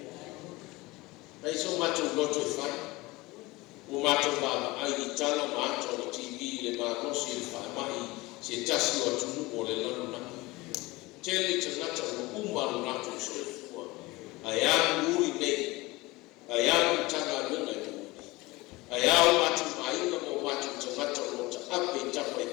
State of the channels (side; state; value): right; quieter; 21.5 dB